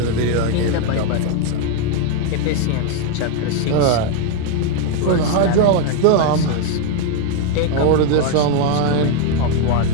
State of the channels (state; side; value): different; both; correlation 0.01